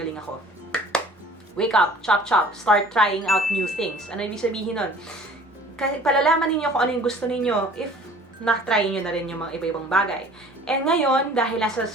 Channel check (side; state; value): both; normal; correlation 0.49